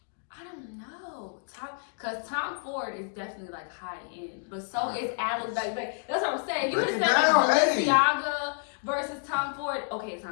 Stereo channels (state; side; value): silent; right; 58 dB below the other